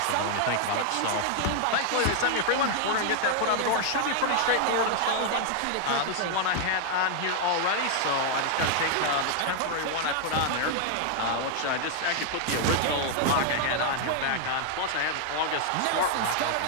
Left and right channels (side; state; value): both; different; correlation 0.00